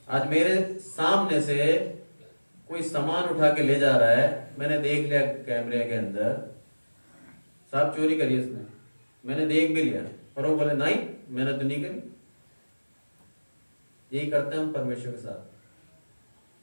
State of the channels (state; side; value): inverted; both; correlation -1.00